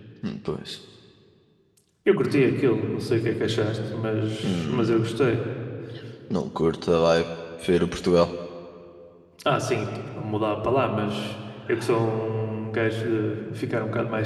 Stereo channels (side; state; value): both; identical; correlation 1.00